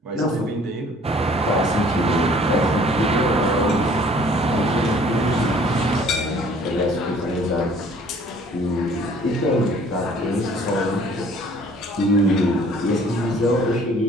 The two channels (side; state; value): both; normal; correlation 0.55